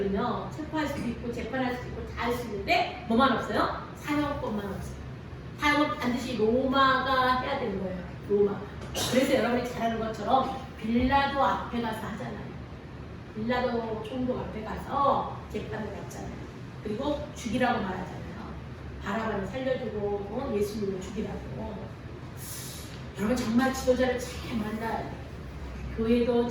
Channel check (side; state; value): both; identical; correlation 1.00